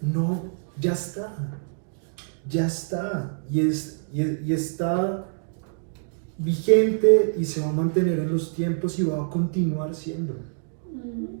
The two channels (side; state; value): left; silent; digital silence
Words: No, ya está, y está vigente y se va a mantener en los tiempos y va a continuar siendo.